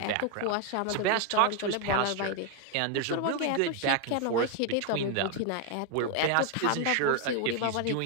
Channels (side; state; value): both; different; correlation 0.01